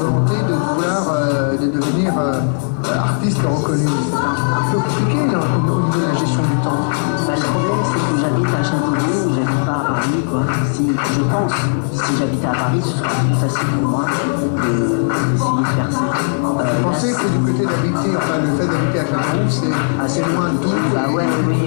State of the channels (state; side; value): silent; right; 66 dB below the other